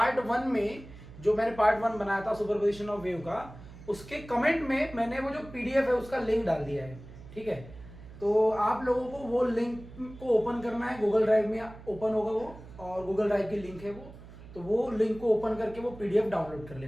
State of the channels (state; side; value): noise; right; hum, 17 dB below the sound